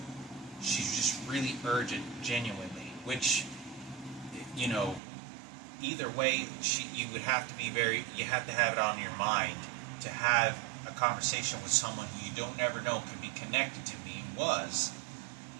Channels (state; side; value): drops out; left; at 5.0 s